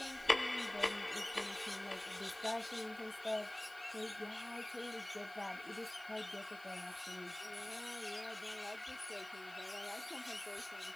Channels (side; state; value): right; noise; hiss, 20 dB below the sound